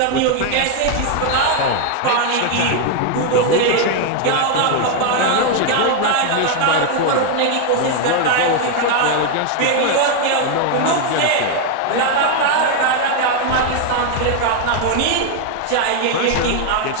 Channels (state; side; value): different; both; correlation 0.01